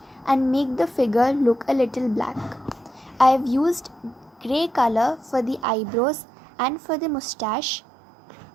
and make the figure look a little black. I have used grey color for the eyebrows and for the moustache,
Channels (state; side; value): drops out; left; at 5.7 s